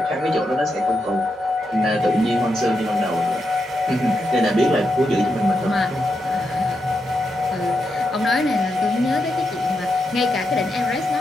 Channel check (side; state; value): both; normal; correlation 0.84